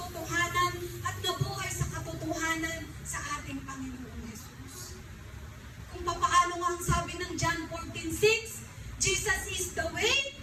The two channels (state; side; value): identical; both; correlation 1.00